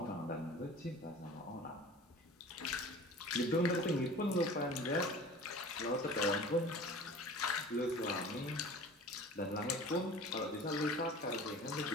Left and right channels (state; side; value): normal; both; correlation 0.41